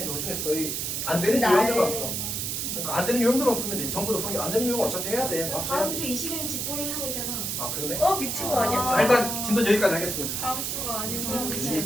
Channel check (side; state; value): right; noise; hiss, 2 dB below the sound